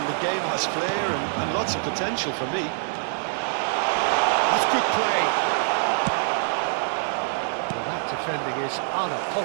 the game has flair and lots of potential for me. That's good play. Well, that defending is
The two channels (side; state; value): left; silent; 62 dB below the other